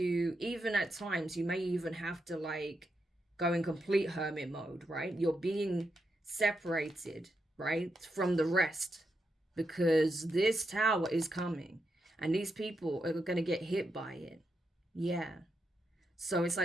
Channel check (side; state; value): both; normal; correlation 0.84